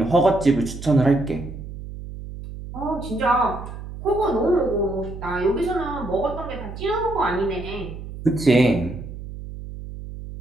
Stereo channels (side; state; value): right; noise; hum, 11 dB below the sound